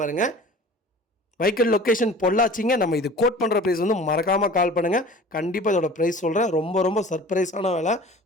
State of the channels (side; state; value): both; normal; correlation 0.43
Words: பாருங்கள். வெஹிக்கிள் லொக்கேஷன் பொள்ளாச்சிங்க. நம்ம இது கோட் பண்ணுற ப்ரைஸ் வந்து மறக்காமல் கால் பண்ணுங்கள். கண்டிப்பாக இதோட ப்ரைஸ் சொல்கிறேன். ரொம்ப ரொம்ப சர்ப்ரைஸான வேலை.